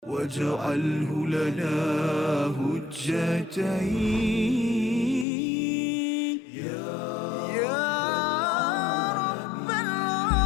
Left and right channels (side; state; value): right; drops out; at 5.2 s